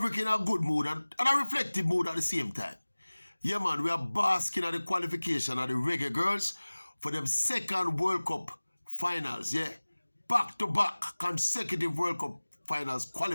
in a good mood and a reflective mood at the same time. Yeah, man, we are basking at the qualification of the Reggae Girls for them second World Cup finals, yeah? Back-to-back consecutive World Cup finals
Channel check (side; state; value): both; inverted; correlation -1.00